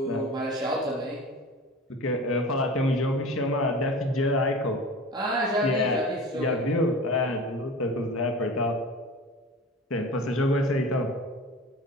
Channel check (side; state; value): both; normal; correlation 0.36